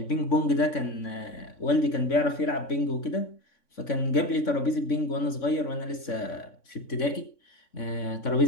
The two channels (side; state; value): right; late; 3.5 ms